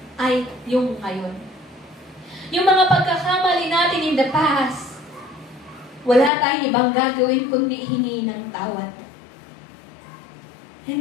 ay yung ngayon. Yung mga pagkakamali natin in the past, wala tayong ibang gagawin kundi hingi ng tawad.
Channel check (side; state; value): right; drops out; at 6.3 s